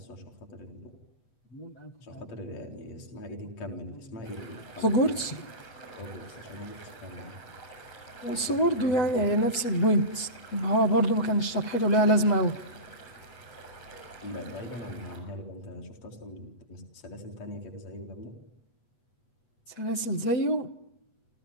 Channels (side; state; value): right; late; 8.1 ms